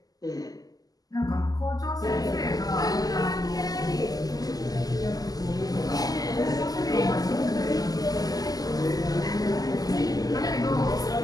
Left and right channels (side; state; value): right; late; 0.18 ms